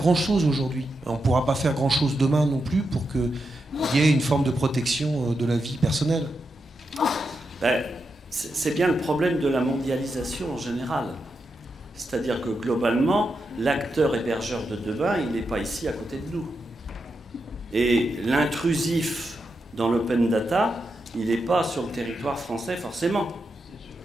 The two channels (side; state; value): both; normal; correlation 0.86